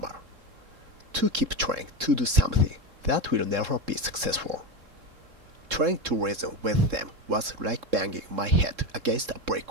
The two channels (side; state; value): left; late; 3.7 ms